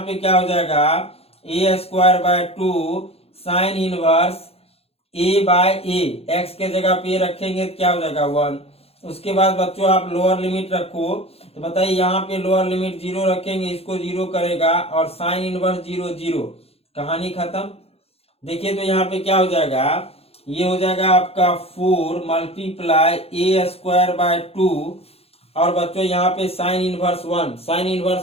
क्या हो जाएगा, a² by 2 sine inverse a by a, x के जगह पे रखेंगे तो क्या हो जाएगा 1। उसके बाद बच्चों आप लोअर लिमिट रखो, तो बताइए यहाँ पे लोअर लिमिट 0 रखेंगे, इसको 0 करेगा, और साइन इनवर्स 0 0, कहानी खत्म। देखिए तो यहाँ पे क्या हो जाएगा, ये हो जाएगा आपका 4 मल्टीप्लाई a² बाय 2, और बच्चों यहाँ पे साइन इनवर्स 1, साइन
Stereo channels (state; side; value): late; right; 0.29 ms